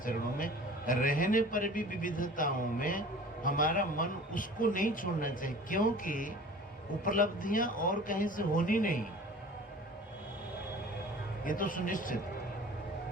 में रहने पर भी विविधताओं में हमारा मन उसको नहीं छोड़ना चाहिए, क्योंकि उपलब्धियां और कहीं से होनी नहीं, ये तो सुनिश्चित।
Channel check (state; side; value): normal; both; correlation 0.43